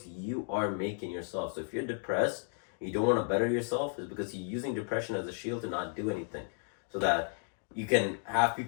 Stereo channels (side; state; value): right; silent; 55 dB below the other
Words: you are making yourself. So if you're depressed, and you don't want to better yourself, it's because you're using depression as a shield to not do anything, so that you can have